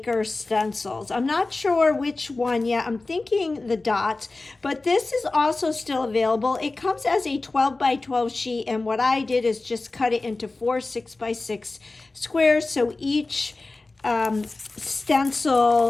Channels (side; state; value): right; quieter; 3.3 dB